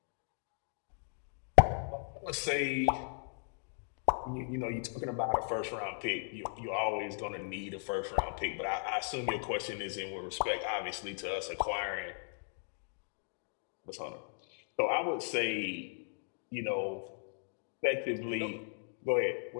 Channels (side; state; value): right; silent; 53 dB below the other